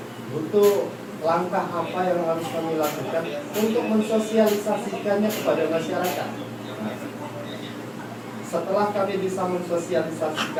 langkah apa yang harus kami lakukan untuk mensosialisasikannya kepada masyarakat. Nah, setelah kami bisa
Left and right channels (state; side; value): identical; both; correlation 1.00